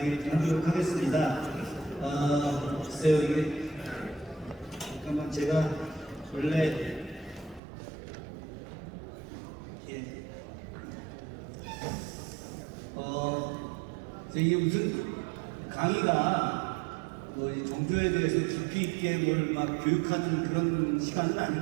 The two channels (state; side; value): drops out; left; at 7.6 s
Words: 좀 하도록 하겠습니다. 글쎄요, 이게 잠깐만 제가 원래 이게 무슨 강의가 뭐 정조에 대해서 깊이 있게 뭘 막 교육하는 그런 시간은